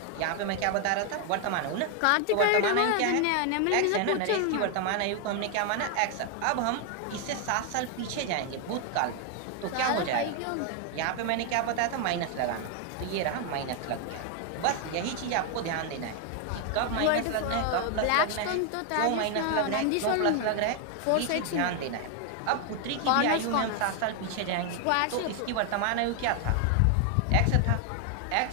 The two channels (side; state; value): both; different; correlation 0.00